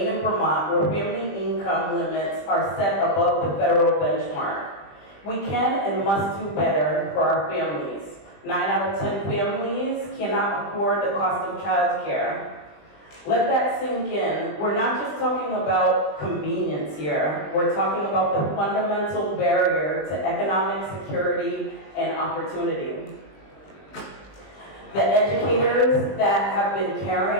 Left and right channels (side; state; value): right; late; 20 ms